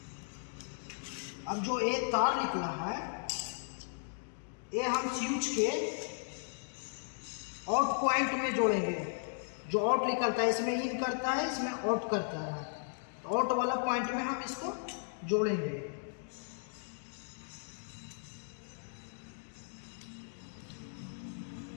अब जो ये तार निकला है ये हम स्विच के आउट पॉइंट में जोड़ेंगे। जो आउट निकलता है इसमें इन करता है, इसमें आउट करता है, तो आउट वाला पॉइंट में हम इसको जोड़ेंगे।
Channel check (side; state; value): right; silent; digital silence